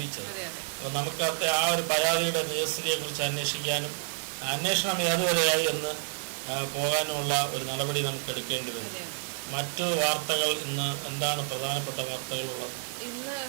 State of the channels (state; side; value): silent; left; 58 dB below the other